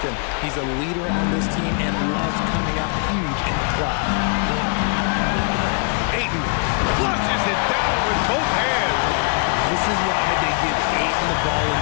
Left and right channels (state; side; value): quieter; right; 39.0 dB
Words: him. He's a leader on this team and loves coming up huge in the clutch. Ayton flushes it down with both hands. This is why they give Ayton the ball in